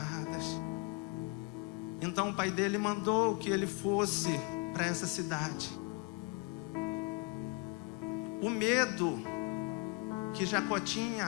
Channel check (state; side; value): quieter; right; 27.2 dB